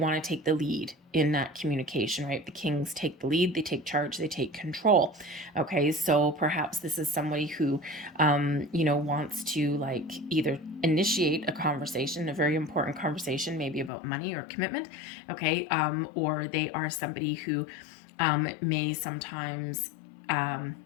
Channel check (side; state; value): right; drops out; at 13.9 s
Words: to take the lead in that communication, right? The kings take the lead, they take charge, they take control. Okay, so perhaps this is somebody who, wants to like either initiate a conversation, a very important conversation, maybe about money or commitment. Okay, or they are somebody who may sometimes